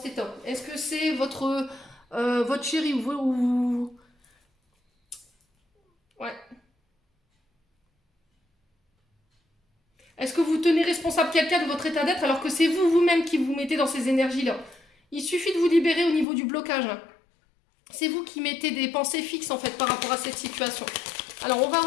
état? Est-ce que c'est votre chéri ou... Ouais. Est-ce que vous tenez responsable quelqu'un de votre état d'être alors que c'est vous-même qui vous mettez dans ces énergies-là? Il suffit de vous libérer au niveau du blocage. C'est vous qui mettez des pensées fixes en fait par rapport à cette situation. Alors on va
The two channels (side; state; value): right; drops out; at 16.2 s